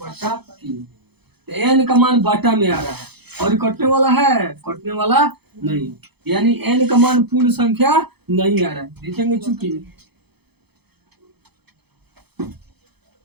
तो n का मान बाटा में आ रहा है और ये कटने वाला है, कटने वाला नहीं, यानी n का मान पूर्ण संख्या नहीं आ रहा है। देखेंगे चूंकि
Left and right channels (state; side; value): late; left; 0.98 ms